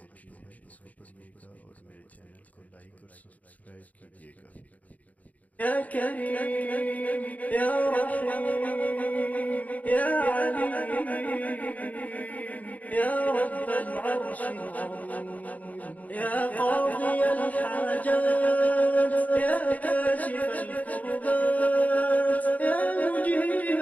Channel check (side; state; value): right; late; 0.074 ms